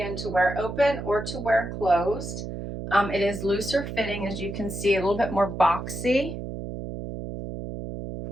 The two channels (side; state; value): right; noise; hum, 7 dB below the sound